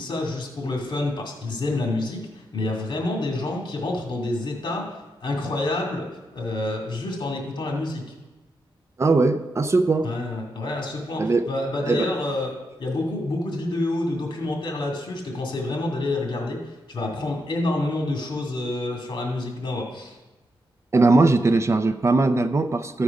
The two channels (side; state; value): both; normal; correlation 0.83